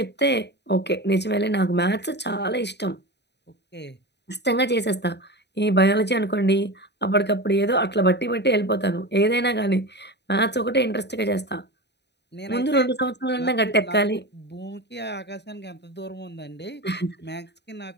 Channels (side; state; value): right; late; 0.50 ms